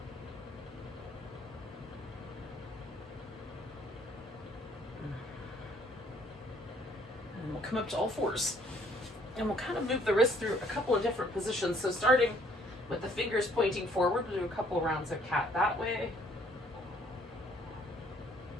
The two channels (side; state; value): both; normal; correlation 0.62